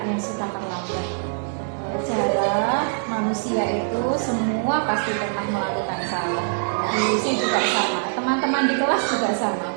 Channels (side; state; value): left; silent; digital silence